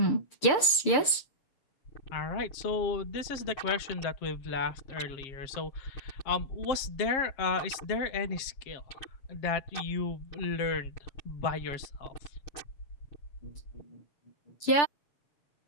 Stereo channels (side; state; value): right; late; 6.8 ms